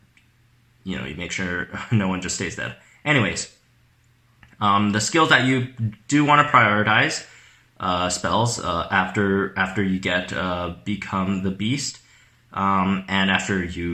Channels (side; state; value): both; identical; correlation 1.00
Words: you make sure no one just stays dead. Anyways, the skills that you do want to prioritize spells after you get Become the Beast, and after